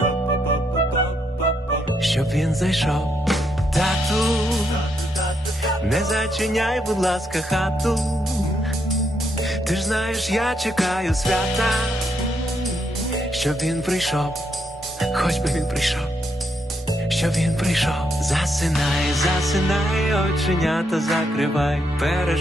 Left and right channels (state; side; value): normal; both; correlation 0.77